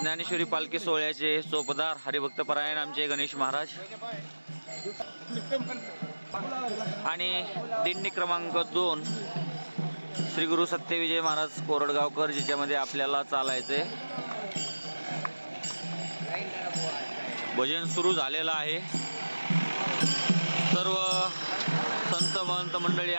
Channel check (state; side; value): inverted; both; correlation -1.00